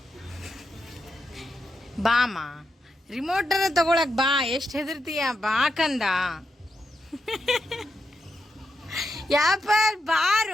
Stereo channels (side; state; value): both; normal; correlation 0.85